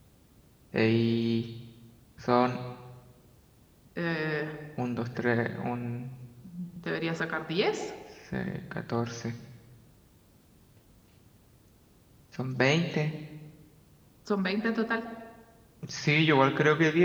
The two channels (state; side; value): identical; both; correlation 1.00